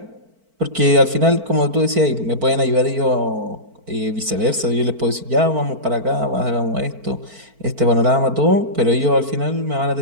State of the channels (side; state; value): left; late; 4.5 ms